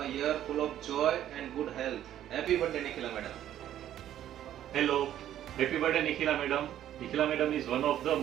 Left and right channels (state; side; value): quieter; left; 11.6 dB